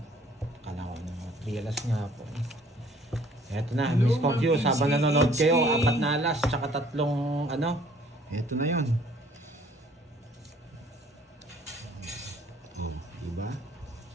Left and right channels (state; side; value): normal; both; correlation 0.57